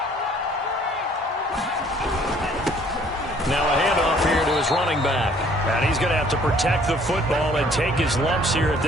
Now a handoff here to his running back. And he's going to have to protect the football and take his lumps here at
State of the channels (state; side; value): normal; both; correlation 0.58